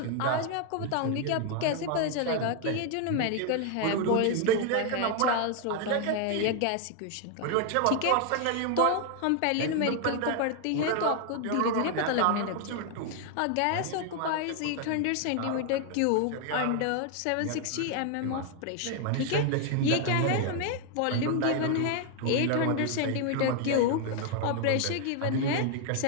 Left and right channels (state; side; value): different; both; correlation 0.00